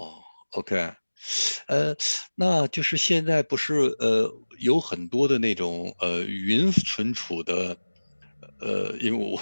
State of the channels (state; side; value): inverted; both; correlation -1.00